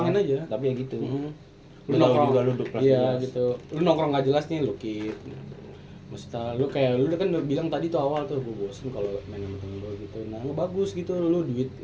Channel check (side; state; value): both; identical; correlation 1.00